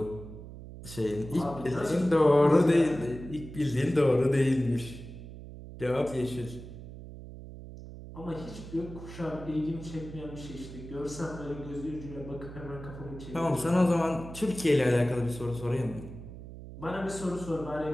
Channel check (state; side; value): noise; right; hum, 13 dB below the sound